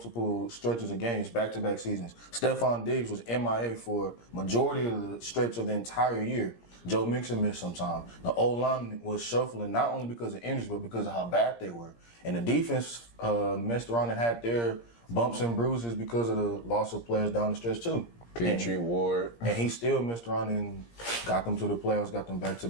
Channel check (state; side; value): late; right; 17 ms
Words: stretches of games back-to-back seasons. Stephon Diggs was MIA for majority of the stretch of the entire year. Joe Mixon missed some time. The O-line was shuffling not only because of injuries, but because of how bad they were. And the defense messed around and had their bumps and bruises because of the loss of players down the stretch too. Petrie, Ward. And he still messed around and got them to the playoffs, got them